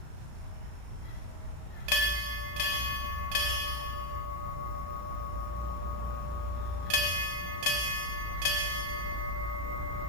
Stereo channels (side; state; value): left; late; 34 ms